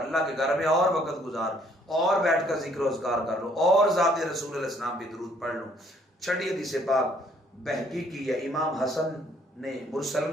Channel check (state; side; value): normal; both; correlation 0.64